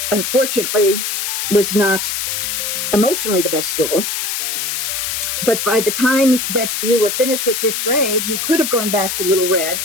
unfortunately was not emotionally the best school. But by the time that you were finished with 5th grade, you could have gone back to Little Red,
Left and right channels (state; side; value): noise; left; hiss, 2 dB below the sound